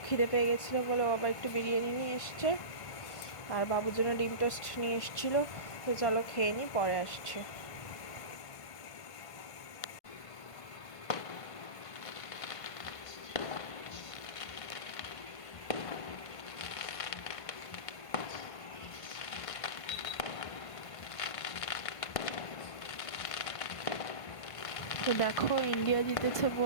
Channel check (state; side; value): late; right; 1.5 ms